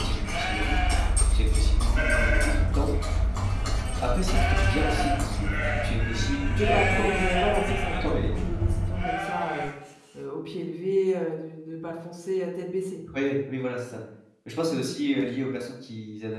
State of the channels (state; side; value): identical; both; correlation 1.00